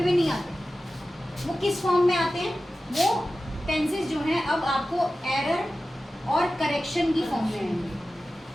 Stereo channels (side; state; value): both; normal; correlation 0.94